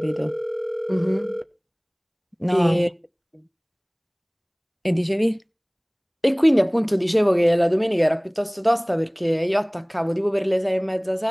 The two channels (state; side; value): identical; both; correlation 1.00